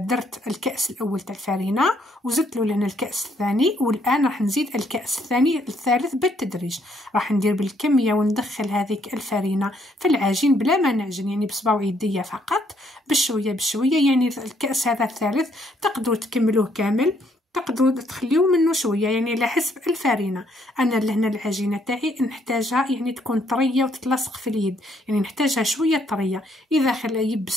الكأس الاول تاع الفارينه وزدت له لهنا الكأس الثاني، والان راح نزيد الكأس الثالث بالتدريج. راح ندير بالكميه وندخل هذيك الفارينه في العجين بلا ما نعجن، يعني بصبع يديا فقط بشويه بشويه. يعني الكأس هذا الثالث تقدروا تكملوه كامل، تقدروا تخليو منه شويه، يعني على حسب الفارينه. انا لهنا العجينه تاعي نحتاجها يعني تكون طريه وتتلصق في اليد، يعني نحتاجها شويه طريه. اذا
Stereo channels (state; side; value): normal; both; correlation 0.69